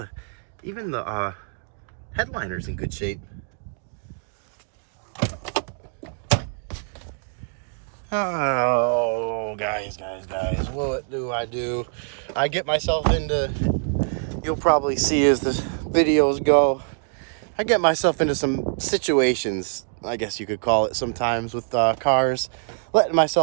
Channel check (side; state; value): left; silent; 58 dB below the other